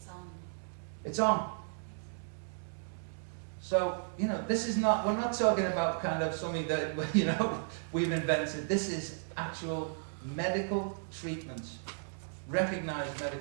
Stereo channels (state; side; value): silent; left; digital silence